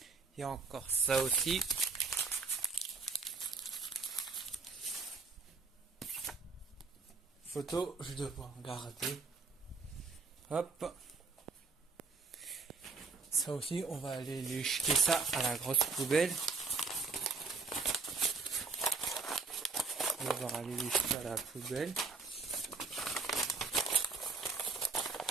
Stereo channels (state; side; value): quieter; left; 4.5 dB